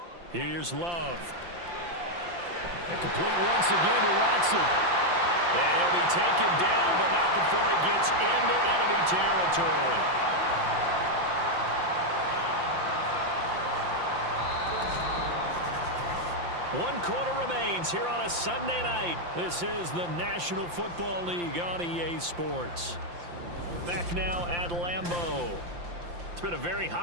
Here's Love. And complete once again to Watson. And he'll be taken down, but not before he gets into enemy territory. One quarter remains here on a Sunday night. This is the National Football League on EA Sports. Back now at Lambeau. It's been a very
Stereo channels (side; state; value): left; late; 5.8 ms